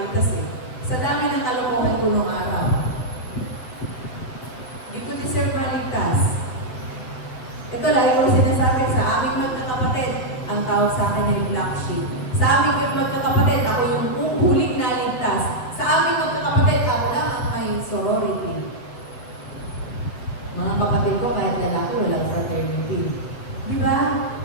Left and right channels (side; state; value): right; late; 7.9 ms